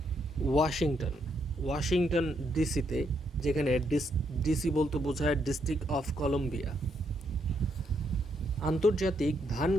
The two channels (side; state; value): both; normal; correlation 0.76